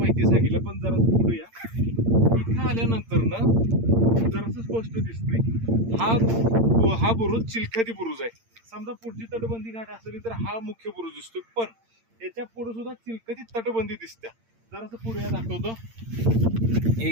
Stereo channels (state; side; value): late; left; 8.8 ms